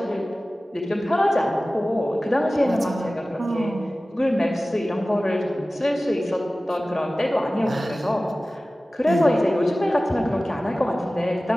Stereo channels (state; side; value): normal; both; correlation 0.97